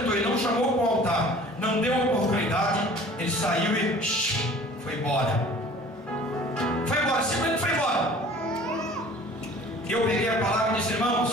e não chamou para o altar, não deu oportunidade, ele saiu e foi embora. Foi embora, simplesmente foi embora. Eu peguei a palavra e disse, irmãos,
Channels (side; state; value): both; normal; correlation 0.47